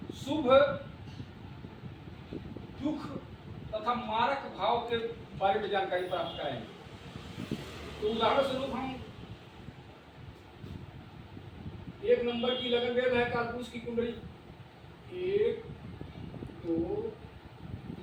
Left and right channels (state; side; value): identical; both; correlation 1.00